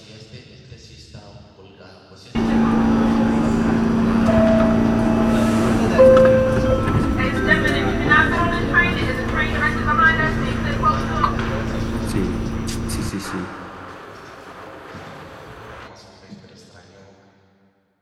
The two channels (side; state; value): both; identical; correlation 1.00